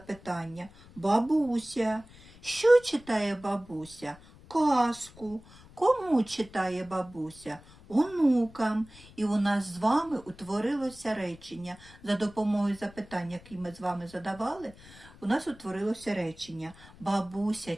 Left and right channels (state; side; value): noise; left; rumble, 22 dB below the sound